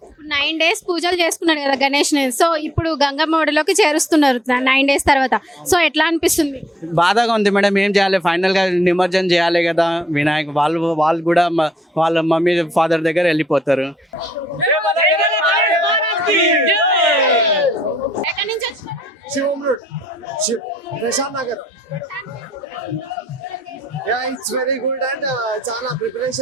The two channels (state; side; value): normal; both; correlation 0.70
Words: 9 days పూజలు చేసుకున్నాడు కదా గణేష్ ని. సో ఇప్పుడు గంగమ్మ ఒడిలోకి చేరుస్తున్నారు 9 days తర్వాత. సో ఎట్లా అనిపిస్తుంది? బాధగా ఉంది మేడం. ఏం చేయాలి, ఫైనల్ గా నిమజ్జనం చేయాలి కదా వినాయక్. వాళ్ళు కూడా వాళ్ళ మమ్మీ ఫాదర్ దగ్గర వెళ్ళిపోతారు. ఎక్కడి నుంచి వచ్చినారు? Prashant Nagar. It's very good and చాలా